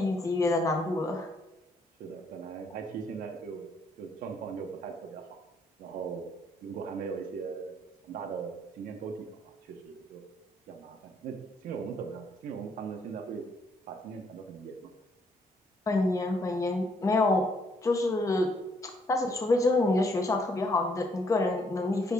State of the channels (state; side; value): normal; both; correlation 0.70